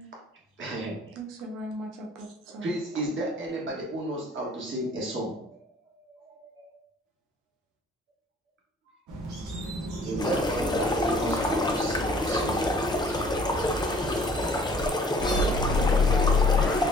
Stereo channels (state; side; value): normal; both; correlation 0.55